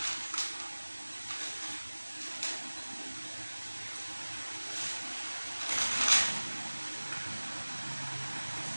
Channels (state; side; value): inverted; both; correlation -1.00